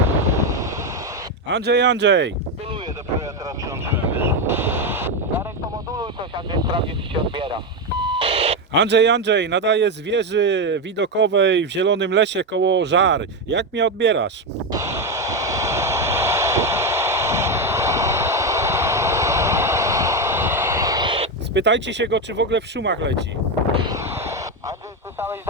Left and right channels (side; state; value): both; normal; correlation 0.09